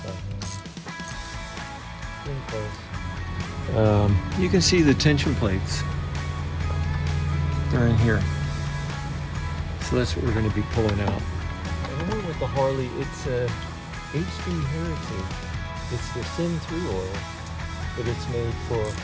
by hand. Getting close. You can see the tension plates. They're in here. So that's what we're going to be pulling out. And then with the Harley, it's a HD Heritage. It's the Sin 3 oil, but it's made for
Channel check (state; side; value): identical; both; correlation 1.00